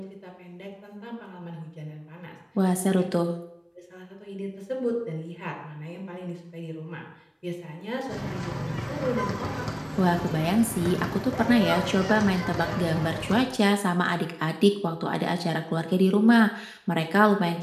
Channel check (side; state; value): both; identical; correlation 1.00